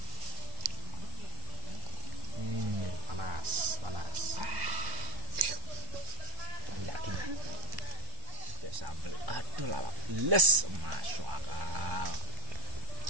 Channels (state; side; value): late; left; 1.0 ms